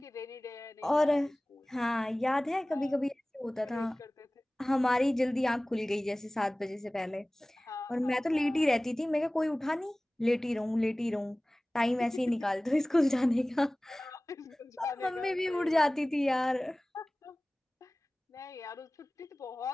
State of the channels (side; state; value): both; normal; correlation 0.98